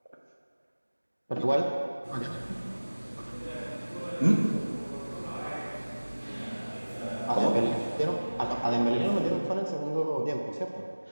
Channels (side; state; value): both; inverted; correlation -1.00